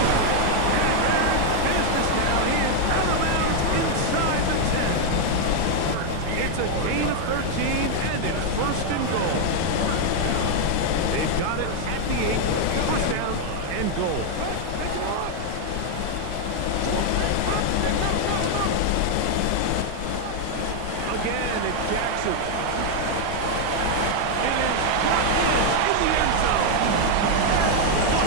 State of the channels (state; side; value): different; both; correlation 0.00